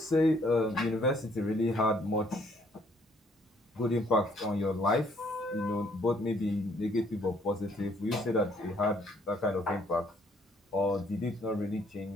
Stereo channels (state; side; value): normal; both; correlation 0.65